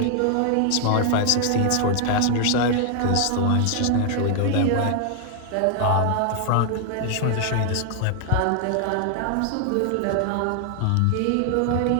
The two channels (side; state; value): both; different; correlation 0.00